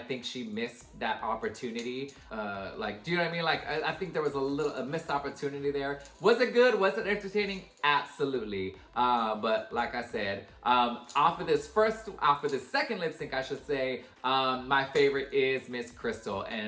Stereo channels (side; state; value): both; identical; correlation 1.00